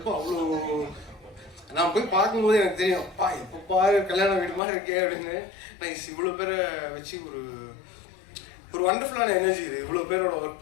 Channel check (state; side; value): drops out; right; at 4.6 s